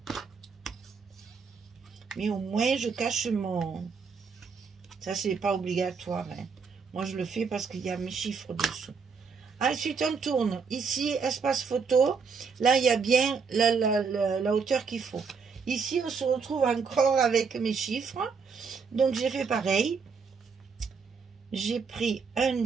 Mais au moins je cache mon... Ça c'est pas obligatoire. Hein. Moi je le fais parce qu'il y a mes chiffres dessous. Ensuite on tourne. Ici espace photo. Là il y a bien la hauteur qu'il faut. Ici on se retrouve encore avec mes chiffres. Donc j'ai fait pareil. J'ai pris un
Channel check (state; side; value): quieter; left; 5.4 dB